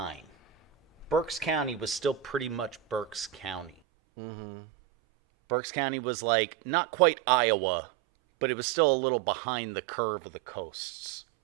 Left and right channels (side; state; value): left; drops out; at 3.7 s